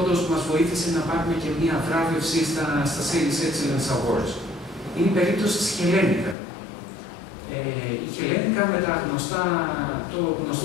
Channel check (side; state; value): right; drops out; at 6.4 s